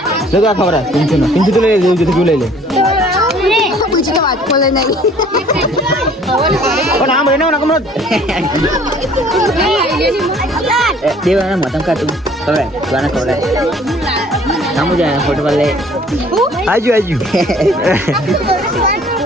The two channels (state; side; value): normal; both; correlation 0.55